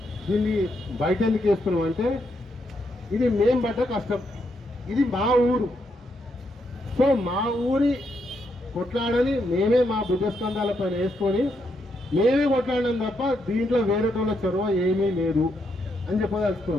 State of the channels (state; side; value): normal; both; correlation 0.78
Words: దీన్ని బయట ఎందుకు వేస్తున్నాం అంటే, ఇది మేం పడ్డ కష్టం, ఇది మా ఊరు. సో మా ఊరి కొట్లాడని మేమే మా భుజస్కంధాల పైన వేసుకొని మేమే కొట్లాడినాం తప్ప దీంట్లో వేరేటోళ్ళ చొరవ ఏమీ లేదు అని